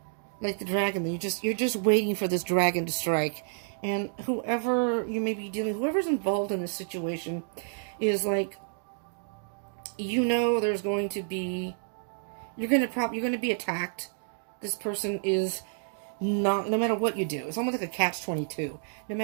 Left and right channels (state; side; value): silent; left; digital silence